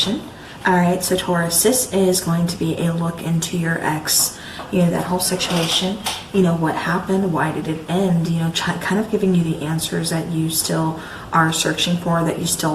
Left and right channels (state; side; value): identical; both; correlation 1.00